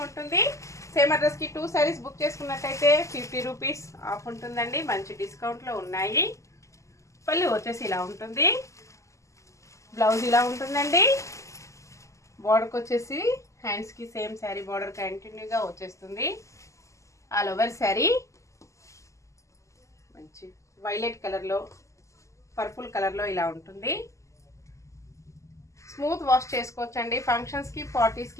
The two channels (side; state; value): right; late; 0.15 ms